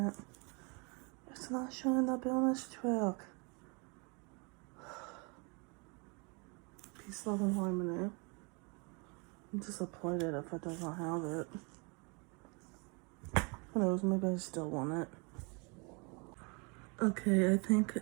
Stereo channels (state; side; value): quieter; left; 32.0 dB